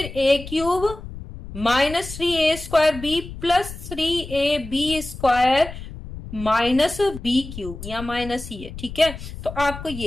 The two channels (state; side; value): noise; left; rumble, 12 dB below the sound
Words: A cube -3a² B plus 3ab² minus B cube, या माइनस ही है। ठीक है, तो आपको